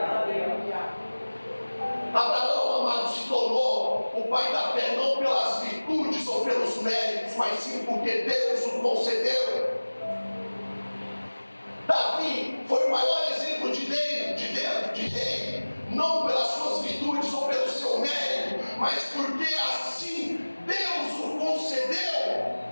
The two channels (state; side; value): inverted; both; correlation -1.00